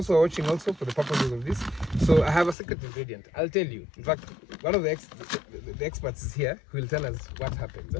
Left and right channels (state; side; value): drops out; right; at 2.6 s